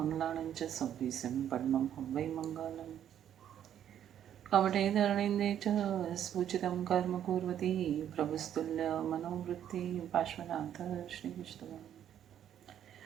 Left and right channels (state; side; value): quieter; left; 10.1 dB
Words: च संविसिं पद्मं हं वै मङ्गलम् कमठे धरणीन्दे च स्फुचितं कर्म कुर्वती प्रभुस्तुल्यमनोवृत्ति पार्श्वनाथ श्रीविष्णुः